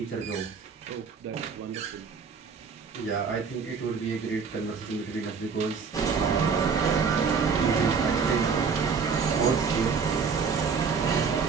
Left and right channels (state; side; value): quieter; left; 5.6 dB